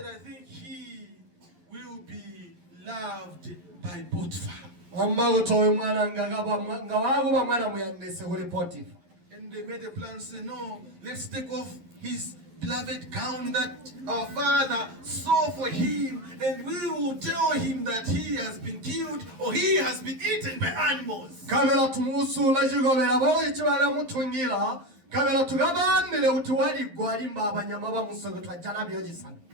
I think he will be loved by Potiphar. And they made a plan, say, no, let's take off his beloved gown that our father saw for him, and we will tell him that he has been killed or he has been eaten by animals.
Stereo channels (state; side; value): late; left; 11 ms